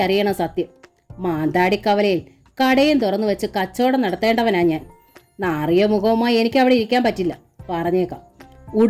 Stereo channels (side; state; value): both; identical; correlation 1.00